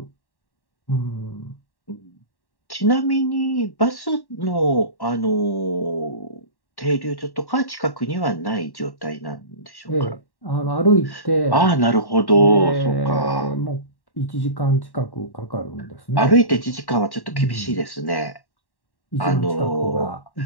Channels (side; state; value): right; late; 1.1 ms